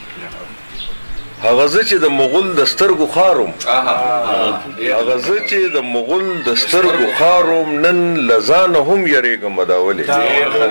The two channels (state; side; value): inverted; both; correlation -1.00